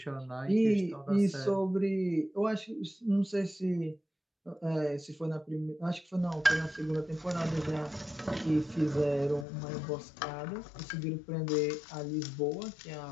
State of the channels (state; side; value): drops out; right; at 9.5 s